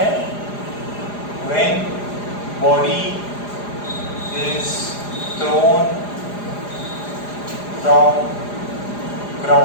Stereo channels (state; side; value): late; right; 4.9 ms